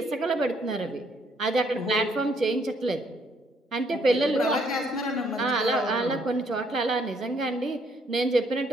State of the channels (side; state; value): both; normal; correlation 0.68